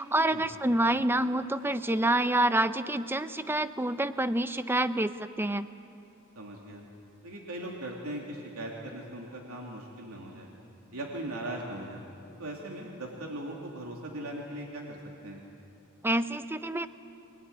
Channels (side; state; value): both; normal; correlation 0.63